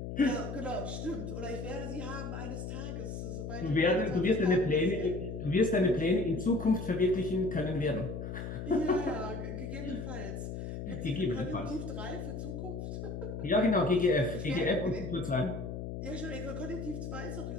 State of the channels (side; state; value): left; noise; hum, 6 dB below the sound